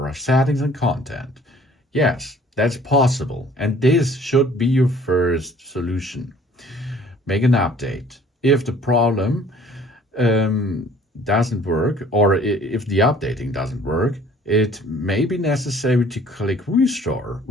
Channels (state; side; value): normal; both; correlation 0.54